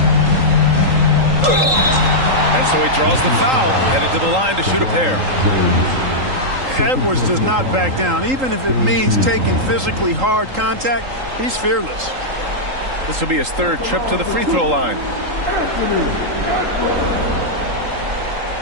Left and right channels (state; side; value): late; left; 3.8 ms